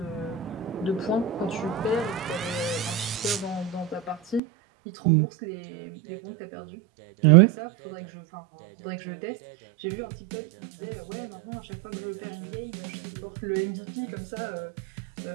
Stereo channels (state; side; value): drops out; left; at 4.4 s